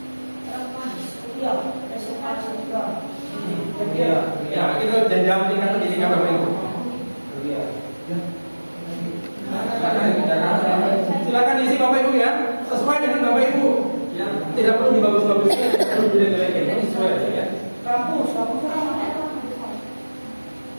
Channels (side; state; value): both; inverted; correlation -1.00